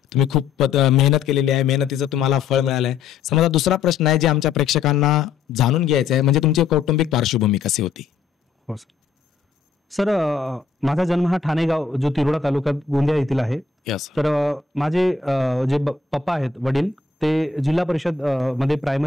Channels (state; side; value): quieter; right; 5.3 dB